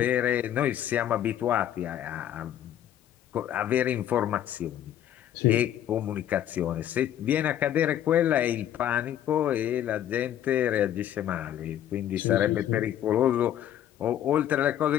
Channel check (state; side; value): quieter; right; 11.2 dB